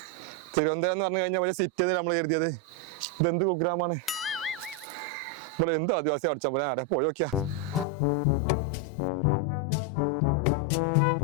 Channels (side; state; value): right; drops out; at 7.9 s